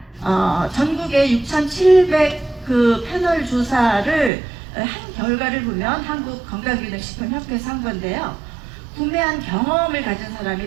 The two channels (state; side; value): drops out; left; at 4.3 s